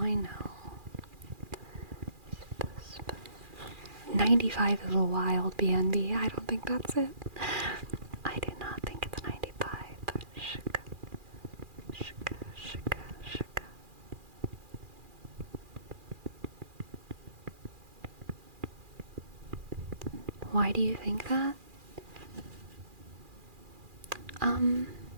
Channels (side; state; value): left; late; 2.4 ms